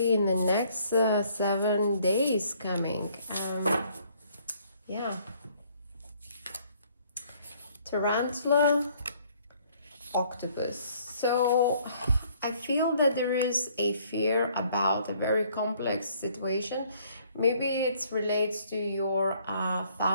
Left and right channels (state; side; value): inverted; both; correlation -0.62